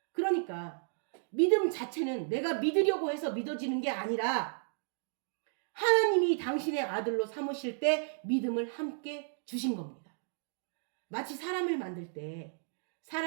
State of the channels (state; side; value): silent; left; digital silence